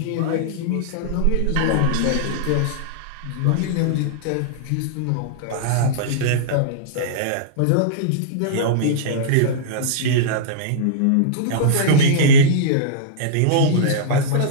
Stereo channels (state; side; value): different; both; correlation -0.03